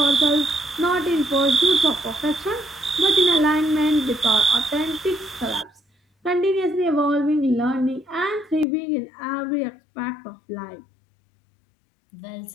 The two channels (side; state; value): right; drops out; at 8.7 s